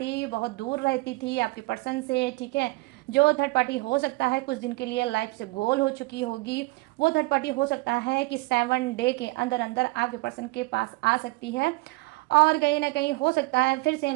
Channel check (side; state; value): left; quieter; 23.0 dB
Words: बहुत दूर रहती थी आपके पर्सन से, ठीक है, जो थर्ड पार्टी हो सकता है कुछ दिन के लिए लाइफ से गोल हो चुकी होगी, वो थर्ड पार्टी हो सकता है कि 7 डे के अंदर अंदर आपके पर्सन के पास आ सकती है, और कहीं ना कहीं हो सकता है फिर से इन